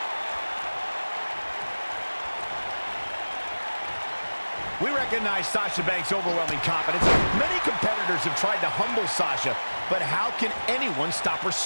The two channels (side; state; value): both; inverted; correlation -1.00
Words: We recognize Sasha Banks' overwhelming confidence. Many competitors have tried to humble Sasha, but how can anyone stop her